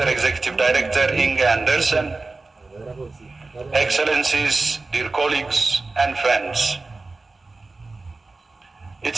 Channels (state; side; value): quieter; left; 3.5 dB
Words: Executive Director Inga Andersen, Excellencies, dear colleagues and friends.